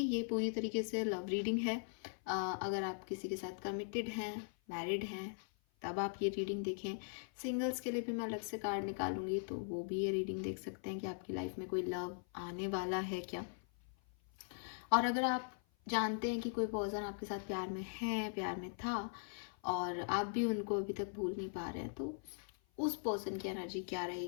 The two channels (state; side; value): silent; right; 51 dB below the other